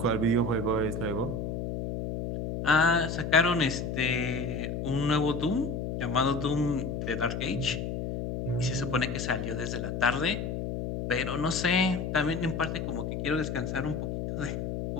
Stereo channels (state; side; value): noise; left; hum, 3 dB below the sound